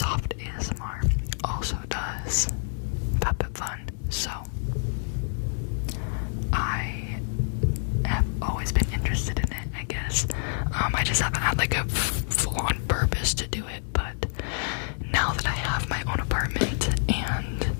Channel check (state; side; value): silent; right; digital silence